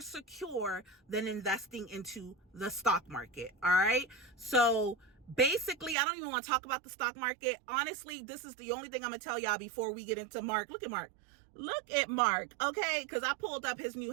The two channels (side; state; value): left; drops out; at 6.0 s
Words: secure than investing into the stock market. All right. So basically, I don't even want to talk about the stock market. Honestly, this is the only thing I'm going to tell y'all before we get into Mark. Look at Mark. Look at Mark. Okay. Cause I pulled up his new